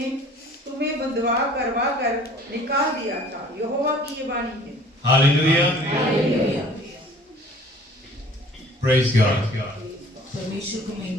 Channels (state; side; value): normal; both; correlation 0.50